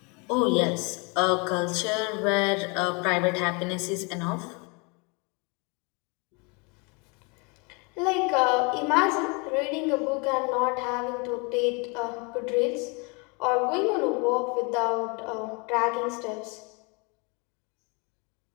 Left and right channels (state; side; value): quieter; right; 31.1 dB